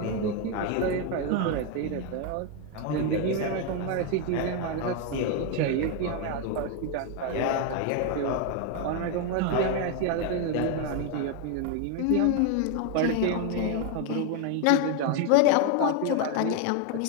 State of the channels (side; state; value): both; different; correlation 0.01